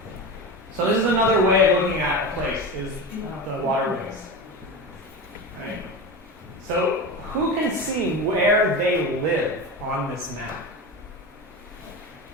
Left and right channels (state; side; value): normal; both; correlation 0.25